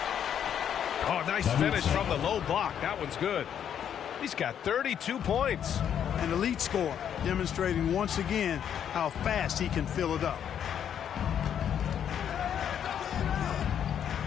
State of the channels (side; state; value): right; quieter; 9.0 dB